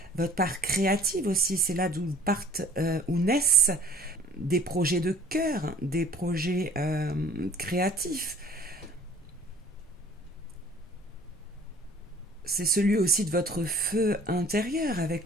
Votre part créative aussi, c'est là d'où partent, où naissent des projets de cœur, des projets créatifs. C'est celui aussi de votre feu intérieur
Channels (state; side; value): normal; both; correlation 0.50